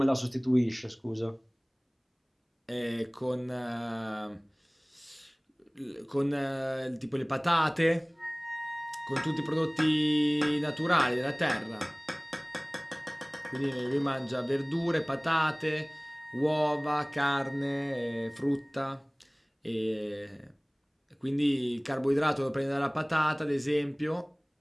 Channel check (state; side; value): identical; both; correlation 1.00